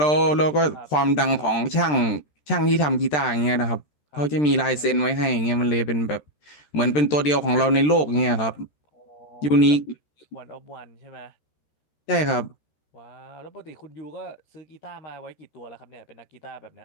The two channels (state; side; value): late; right; 13 ms